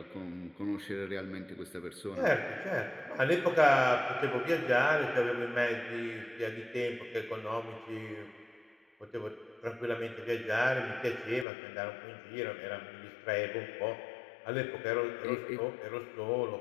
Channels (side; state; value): right; drops out; at 11.5 s